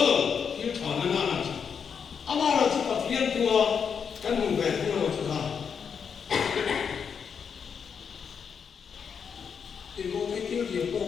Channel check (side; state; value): right; quieter; 6.7 dB